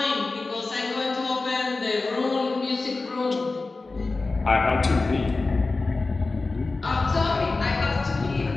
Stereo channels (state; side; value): quieter; right; 3.6 dB